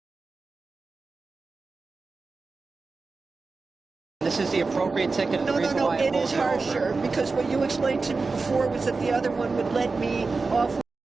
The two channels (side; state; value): left; quieter; 4.0 dB